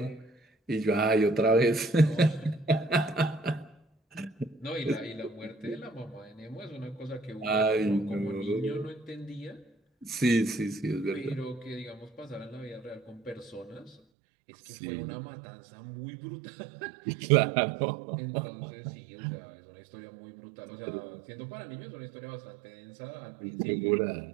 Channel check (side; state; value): left; drops out; at 14.0 s